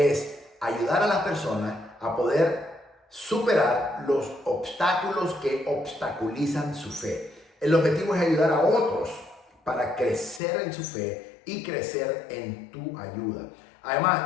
ayudar a las personas a poder superar los obstáculos que obstaculizan su fe. El objetivo es ayudar a otros para crecer en su fe y crecer en tu ayuda.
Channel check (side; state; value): right; drops out; at 10.4 s